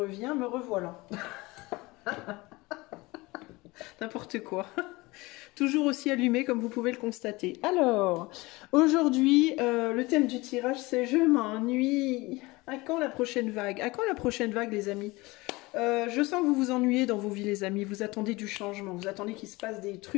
me revoilà. N'importe quoi. Toujours aussi allumé comme vous pouvez le constater. Alors, aujourd'hui, le thème du tirage c'est je m'ennuie. À quand la prochaine vague? À quand la prochaine vague les amis? Je sens que vous vous ennuyez dans vos vies les amis, vous attendez du changement, vous attendez qu'il se passe des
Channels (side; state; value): right; quieter; 22.3 dB